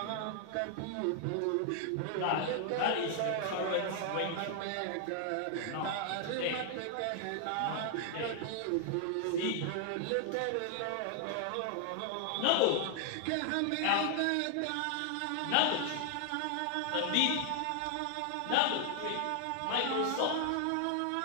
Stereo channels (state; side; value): different; both; correlation 0.00